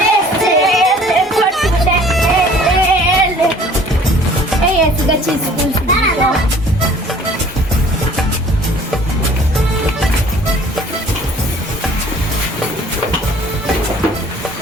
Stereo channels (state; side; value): normal; both; correlation 0.52